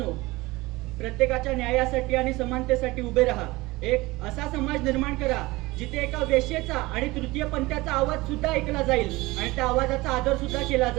प्रत्येकाच्या न्यायासाठी आणि समानतेसाठी उभे राहा। एक असा समाज निर्माण करा जिथे एका वेश्येचा आणि तृतीय पंथाचा आवाज सुद्धा ऐकला जाईल आणि त्या आवाजाचा आदर सुद्धा केला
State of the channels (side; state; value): left; quieter; 20.9 dB